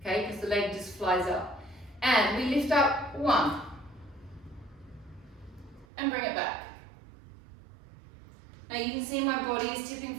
Because the leg just flies up. And we lift up 1. And bring it back. Now you can see my body is tipping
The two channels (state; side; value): drops out; left; at 5.9 s